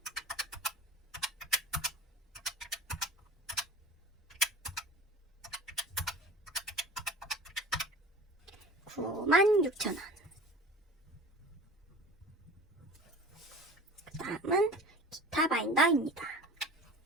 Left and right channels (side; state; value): both; normal; correlation 0.40